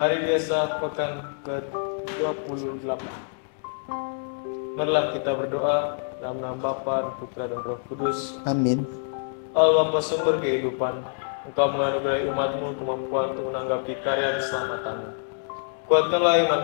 biasa pekan ke-28. Marilah kita berdoa dalam nama Bapa, dan Putra dan Roh Kudus. Amin. Allah Bapa sumber kehidupan, Engkau menganugerahi umat-Mu kemampuan untuk menanggapi karya keselamatan-Mu. Kuatkanlah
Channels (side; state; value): right; silent; digital silence